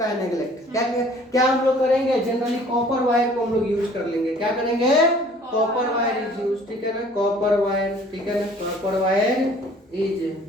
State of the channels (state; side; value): normal; both; correlation 0.53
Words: है नेग्लेक्ट। क्या हम लोग करेंगे? जनरली कॉपर वायर को हम लोग यूज कर लेंगे। क्या करेंगे? Copper wire is use. ठीक है ना, कॉपर वायर। ठीक है ना, कॉपर वायर